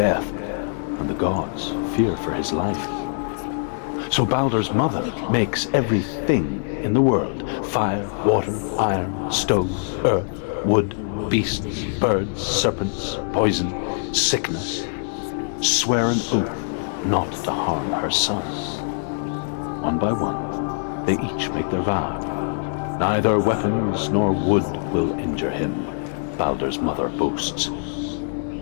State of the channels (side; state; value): right; silent; digital silence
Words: and the gods fear for his life. So Baldur's mother makes everything in the world: fire, water, iron, stone, earth, wood, beasts, birds, serpents, poison, sickness, swear an oath not to harm her son. One by one, they each make their vow. Neither weapons nor wood will injure him, Baldur's mother boasts.